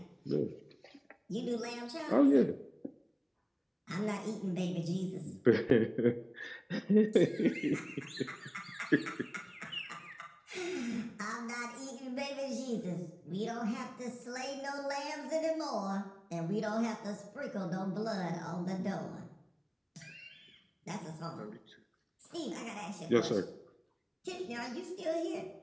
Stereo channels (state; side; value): identical; both; correlation 1.00